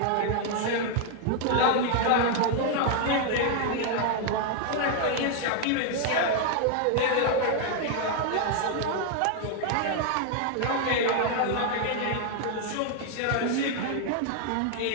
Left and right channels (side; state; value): both; different; correlation 0.00